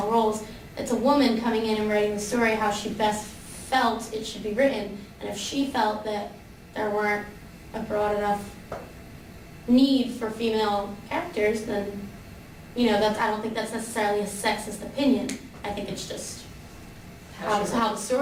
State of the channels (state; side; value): identical; both; correlation 1.00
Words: roles. It's a woman coming in and writing the story how she best felt it should be written. And if she felt that there weren't a broad enough need for female characters, then, I don't think that's necessarily a sexist opinion. I think it's just how the